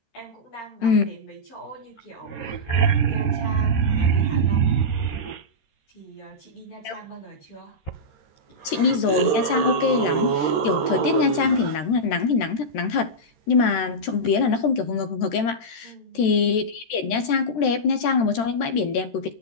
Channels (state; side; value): late; right; 13 ms